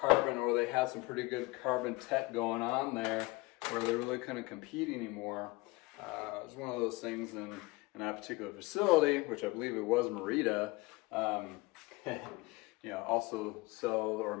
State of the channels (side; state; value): right; quieter; 23.1 dB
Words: or they had some pretty good carbon tech going on there, where they really couldn't compete anymore. It was one of those things in that particular facility, which I believe it was Merida, also sells or